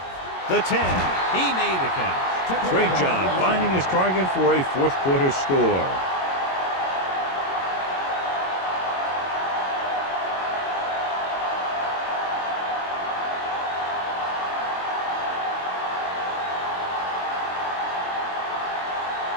The 10. He made the catch. Great job finding his target for a fourth quarter score.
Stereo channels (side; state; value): right; late; 22 ms